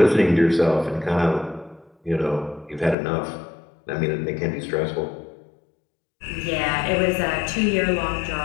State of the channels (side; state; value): right; drops out; at 3.0 s